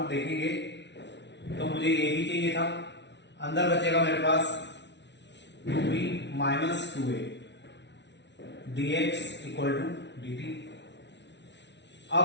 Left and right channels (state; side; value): late; right; 0.51 ms